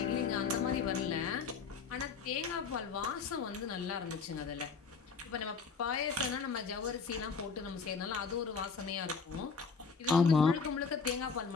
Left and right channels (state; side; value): quieter; right; 5.2 dB